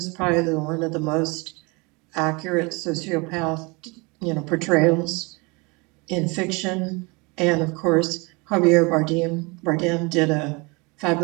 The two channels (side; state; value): left; quieter; 27.8 dB